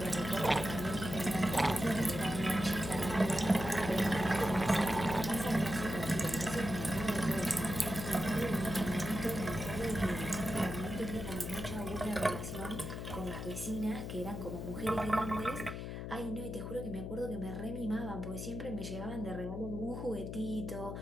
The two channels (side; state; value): left; noise; hum, 6 dB below the sound